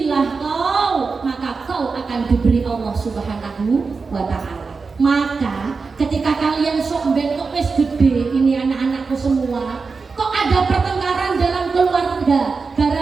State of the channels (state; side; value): quieter; left; 4.6 dB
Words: kau, maka kau akan diberi Allah Subhanahu wa Ta'ala. Maka ketika kalian sok bentuk wis gede, ini anak-anakku semua, kok ada pertengkaran dalam keluarga